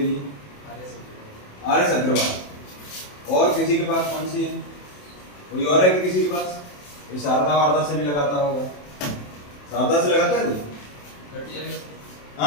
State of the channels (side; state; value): right; late; 27 ms